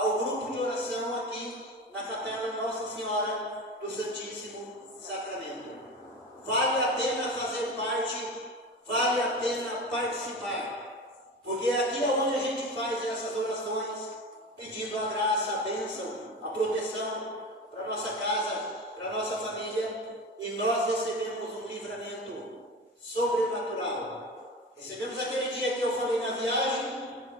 grupo de oração aqui na capela Nossa Senhora do Santíssimo Sacramento. Vale a pena fazer parte, vale a pena participar, porque aqui é onde a gente faz essas orações, pedindo a graça, a bênção, a proteção para a nossa casa, para a nossa família, e nós recebemos um livramento sobrenatural. Recebemos aquele dia que eu falei na viagem,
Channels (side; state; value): both; normal; correlation 0.29